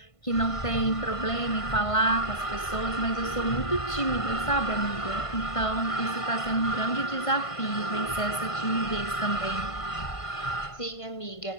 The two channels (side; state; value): right; late; 1.5 ms